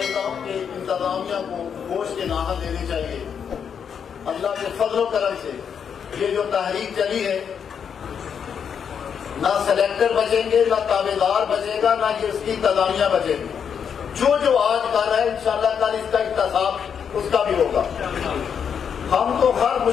ہوں کہ انتظامیہ کو گوشت کے ناحل دینے چاہیے، اللہ کے فضل و کرم سے یہ جو تحریک چلی ہے، نہ سلیکٹر بچیں گے، نہ تابع دار بچے گا، نہ یہ اس کی انتظامیہ بچے گی، جو آج کر رہا ہے انشاءاللہ کل اس کا احتساب اس کا بھی ہوگا۔ ہم تو ہر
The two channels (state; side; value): quieter; right; 7.4 dB